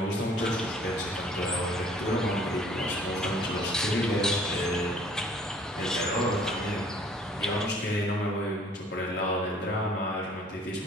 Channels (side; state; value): both; normal; correlation 0.55